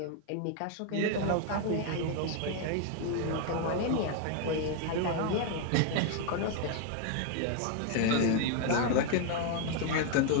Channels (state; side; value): different; both; correlation 0.01